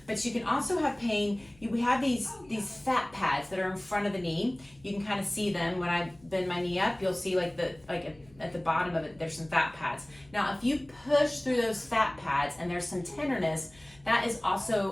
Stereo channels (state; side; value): noise; left; hum, 27 dB below the sound